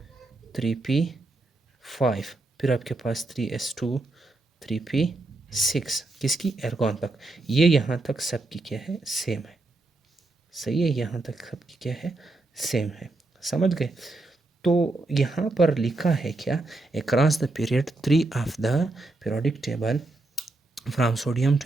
3p5। फिर आपके पास 3s2, 3p6, किसकी? आर्गन तक। ये यहाँ तक सबकी क्या है? सेम है। सही है, यहाँ तक सबकी क्या है? सेम है। समझ गए? तो यहाँ पर लिखा है क्या? Across the period 3 of the periodic table from sodium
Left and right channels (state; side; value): quieter; left; 3.0 dB